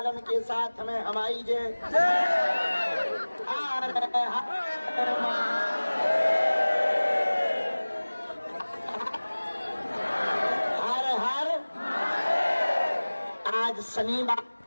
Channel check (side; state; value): both; inverted; correlation -1.00